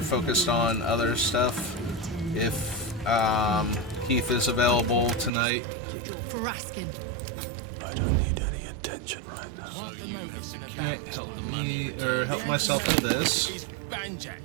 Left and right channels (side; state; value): left; drops out; at 5.3 s